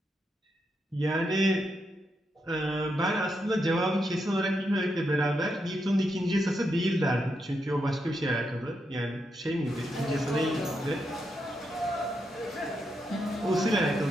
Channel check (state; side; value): normal; both; correlation 0.82